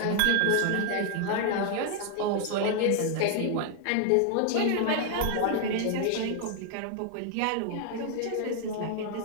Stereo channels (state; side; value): different; both; correlation 0.00